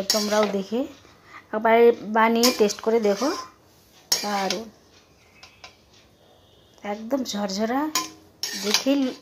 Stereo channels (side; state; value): both; identical; correlation 1.00